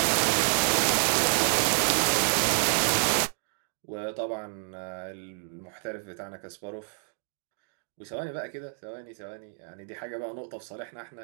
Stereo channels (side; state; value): left; silent; 57 dB below the other